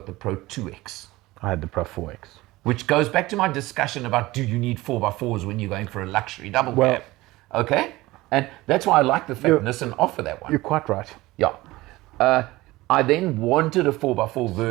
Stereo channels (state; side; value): quieter; left; 19.2 dB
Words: I had the Pro 4X. Which goes back to my discussion about do you need 4x4s when you're going for a luxury double cab? Okay? And that's why I like the fact Nissan offer that one. You're quite right. Yeah. I then wanted a 4x4